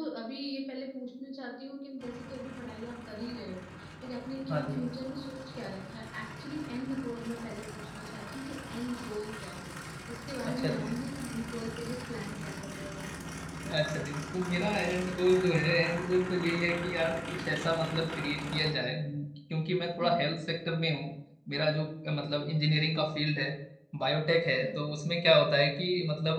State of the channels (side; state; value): both; identical; correlation 1.00